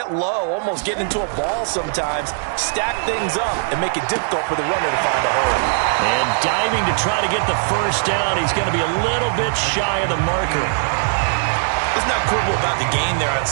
low, almost get into a ball sometimes, stack things up, and make it difficult for the runner to find a hole. And diving to try to get the first down, he's going to be a little bit shy of the marker. Let's not quibble about the gain there on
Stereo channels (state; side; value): silent; left; digital silence